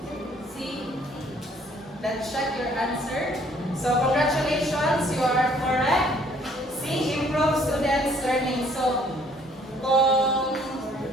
C. Let's check your answer. So congratulations, you are correct. C. Improve students' learning. So kung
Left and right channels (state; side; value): normal; both; correlation 0.61